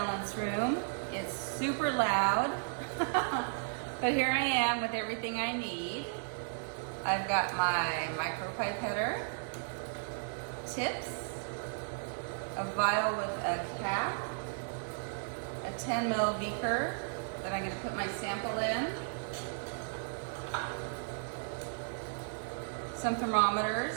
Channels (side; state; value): left; silent; digital silence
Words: room. It's super loud, but here I am with everything I need. I've got my micro pipetter, tips, a vial with a cap, a 10 ml beaker that I'm going to put my sample in, some